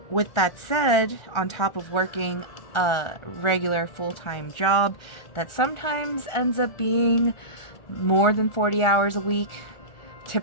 with that said, on top of working a regular full-time job that sometimes ends up being more than 40 hours a week,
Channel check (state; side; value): late; right; 1.4 ms